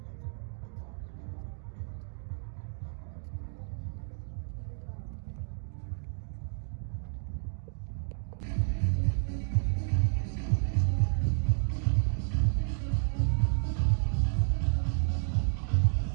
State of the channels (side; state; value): left; silent; digital silence